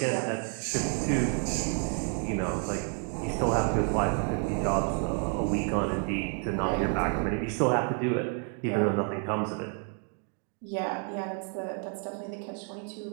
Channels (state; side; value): quieter; left; 39.8 dB